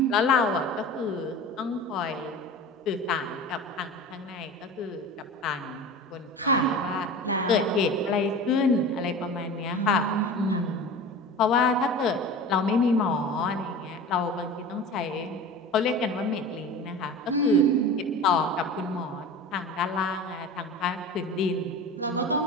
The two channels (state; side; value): normal; both; correlation 0.34